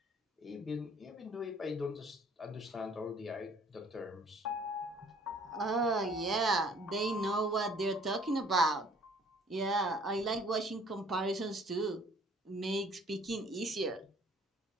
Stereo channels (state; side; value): normal; both; correlation 0.56